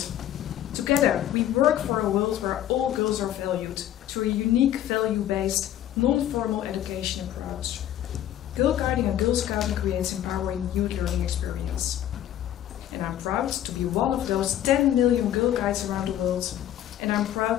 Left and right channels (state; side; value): quieter; right; 11.8 dB